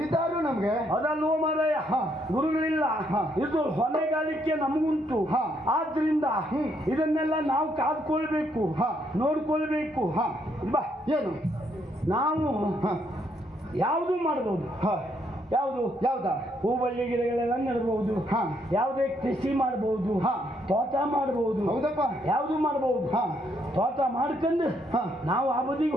ನಮ್ಗೆ. ಅದಲ್ವೋ ಮಾರಾಯ, ಗುರುಗಳಿಲ್ಲ. ಇದು ಹೊಣೆಗಾರಿಕೆ ನಮಗುಂಟು. ಆದ್ರಿಂದ ಇದನ್ನೆಲ್ಲ ನಾವು ಕಾದ್ಕೊಳ್ಬೇಕು, ನೋಡ್ಕೊಳ್ಬೇಕು. ಬಾ, ಏನು ನಾವು ಯಾವುದು ಮಾಡಬಹುದು. ಯಾವ್ದಾ? ಹೂಬಳ್ಳಿ ಗಿಡಗಳೆಲ್ಲ ನೆಡಬಹುದು. ಯಾವುದೇ ಕೃಷಿ ಮಾಡಬಹುದು, ತೋಟ ಮಾಡಬಹುದು. ಹೌದಪ್ಪ, ಯಾವುದು ಮಾಡಬಹುದು. ತೋಟ ಮಾಡ್ಕೊಂಡು ನಾವು ಆ ಬದಿಗೆ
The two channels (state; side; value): normal; both; correlation 0.72